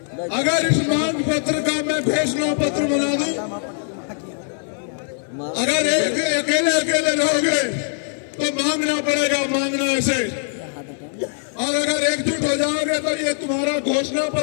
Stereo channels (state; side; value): silent; right; 57 dB below the other